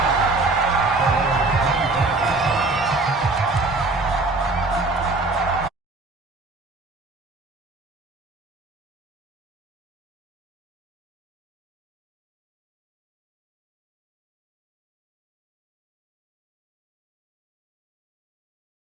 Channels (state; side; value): quieter; left; 3.3 dB